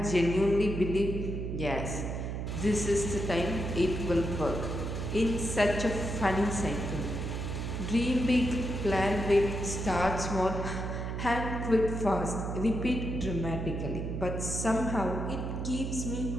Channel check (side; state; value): right; noise; hum, 4 dB below the sound